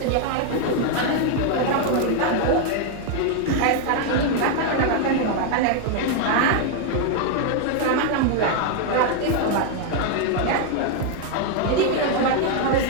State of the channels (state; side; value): different; both; correlation 0.00